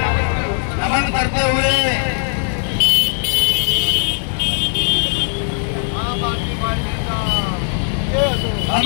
नमन करते हुए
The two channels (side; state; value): right; silent; 67 dB below the other